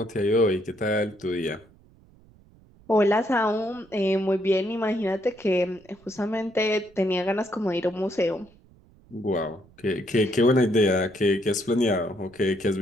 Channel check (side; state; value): right; noise; rumble, 28 dB below the sound